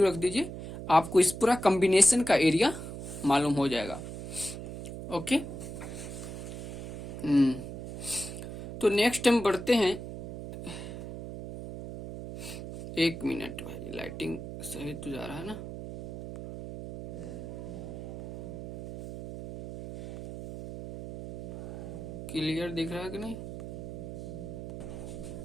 रख दीजिए, आपको इस पूरा कॉम्बिनेशन का एरिया मालूम हो जाएगा। ओके, तो नेक्स्ट हम बढ़ते हैं। 1 मिनट भाई, लाइटिंग सही तो जा रहा है ना। क्लियर दिख रहा है कि नहीं।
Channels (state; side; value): noise; right; hum, 9 dB below the sound